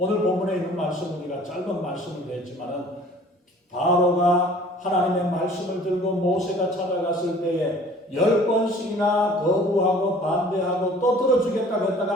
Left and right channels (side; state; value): both; normal; correlation 0.50